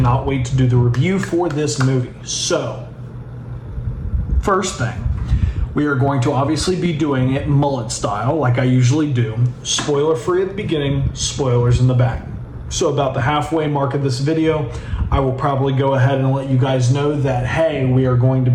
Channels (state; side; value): identical; both; correlation 1.00